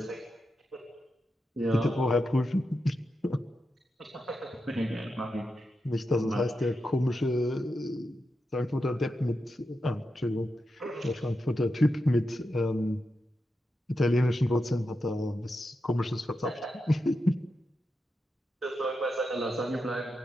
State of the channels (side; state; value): both; normal; correlation 0.88